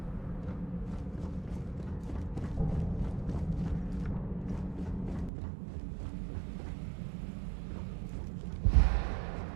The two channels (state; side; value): drops out; left; at 5.3 s